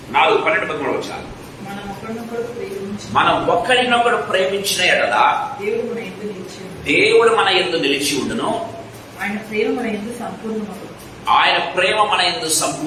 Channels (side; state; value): both; identical; correlation 1.00